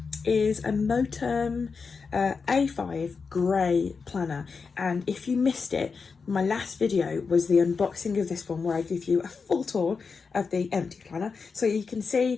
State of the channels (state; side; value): quieter; right; 5.1 dB